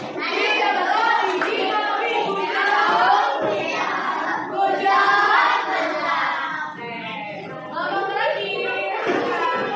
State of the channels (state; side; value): identical; both; correlation 1.00